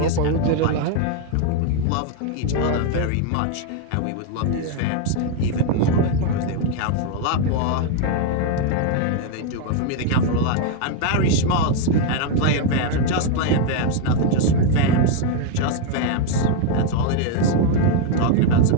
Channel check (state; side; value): different; both; correlation 0.00